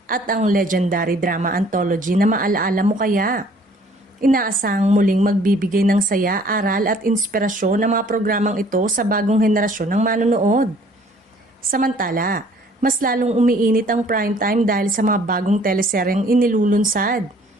at ang legendary drama anthology na Maalaala Mo Kaya. Inaasahang muling magbibigay ng saya, aral at inspirasyon ng mga programang ito sa bagong henerasyon ng manonood. Samantala, mas lalong umiinit ang primetime dahil sa mga bagong teleseryeng inilulunsad.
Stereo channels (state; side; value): normal; both; correlation 0.57